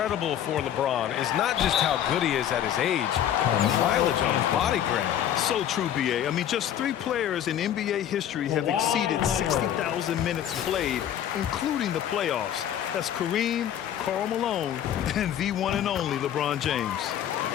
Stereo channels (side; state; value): right; quieter; 10.4 dB